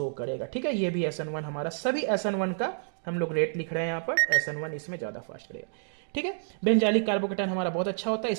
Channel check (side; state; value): left; silent; digital silence